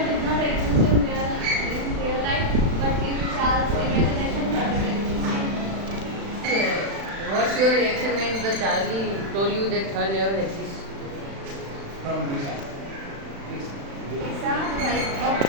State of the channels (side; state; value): left; late; 36 ms